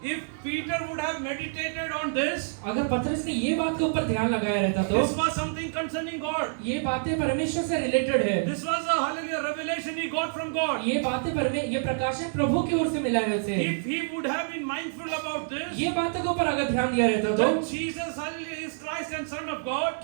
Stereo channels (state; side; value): silent; left; digital silence